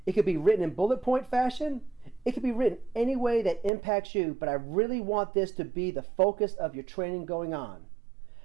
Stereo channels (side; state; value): left; drops out; at 3.7 s